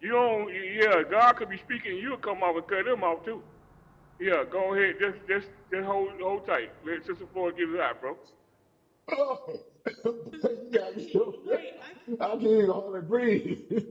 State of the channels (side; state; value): both; identical; correlation 1.00